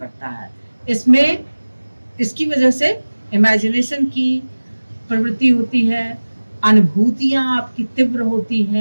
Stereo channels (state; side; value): inverted; both; correlation -1.00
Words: है। इसमें इसकी वजह से इमेजिनेशन की प्रवृत्ति होती है, अनुभूतियाँ आपकी तीव्र होती